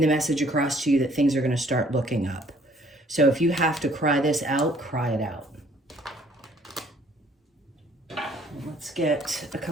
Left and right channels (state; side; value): normal; both; correlation 0.60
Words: the message across to you that things are going to start looking up. So if you have to cry this out, cry it out. Let's get a